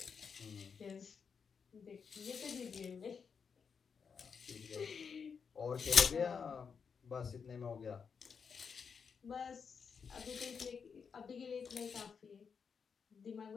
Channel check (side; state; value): right; quieter; 6.1 dB